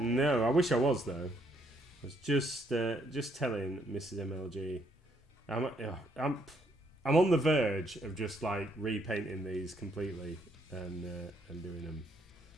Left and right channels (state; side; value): normal; both; correlation 0.71